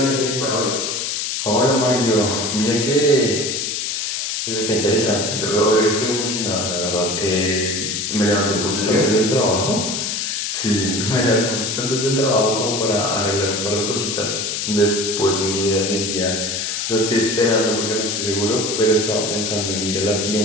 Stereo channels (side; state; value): left; noise; hiss, 2 dB below the sound